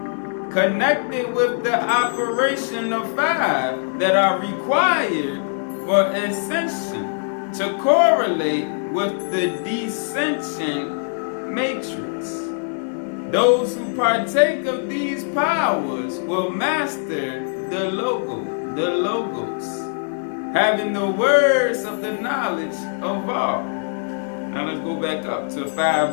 connected with the operation of 5 that are required for ascension to correlate with the descension matrix. Those who partake of these powers will master the logos, having the words of the knowledge of all. Now let's go back up to 5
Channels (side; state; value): right; silent; digital silence